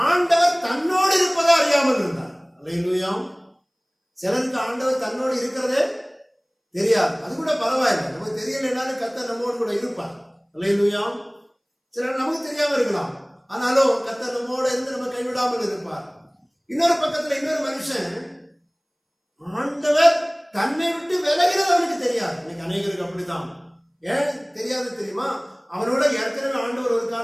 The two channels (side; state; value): both; identical; correlation 1.00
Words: ஆண்டவர் தன்னோடு இருப்பதை அறியாமல் இருந்தார். அல்லேலூயா. சிலருக்கு ஆண்டவர் தன்னோடு இருக்கிறதே தெரியாது. அது கூட பரவாயில்லை, நமக்கு தெரியலைனாலும் கர்த்தர் நம்மோடு கூட இருப்பார். அல்லேலூயா. சிலர் நமக்கு தெரியாம இருக்கலாம், ஆனாலும் கர்த்தர் நம்மோடு இருந்து நம்ம கைவிடாமல் இருப்பார். இன்னொரு பக்கத்துல இன்னொரு மனுஷன் ஆண்டவர் தன்னை விட்டு விலகிறது அவனுக்கு தெரியாது. இன்னைக்கு அநேகருக்கு அப்படித்தான். ஏன் தெரியாது தெரியுமா? அவனோட ஏற்கனவே ஆண்டவர் ஒரு